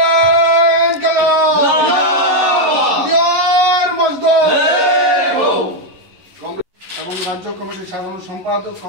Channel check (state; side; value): late; left; 11 ms